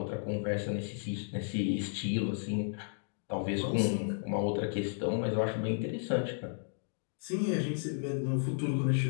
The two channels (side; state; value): right; silent; digital silence